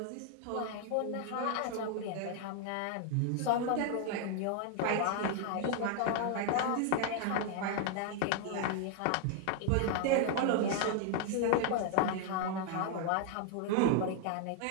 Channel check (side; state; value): both; different; correlation 0.00